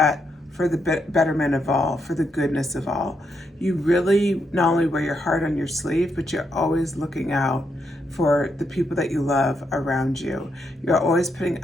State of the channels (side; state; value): both; normal; correlation 0.80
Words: for the betterment of all, for the goodness of all. You really not only wear your heart on your sleeve, but you're always looking out for the people that you love around you. You're always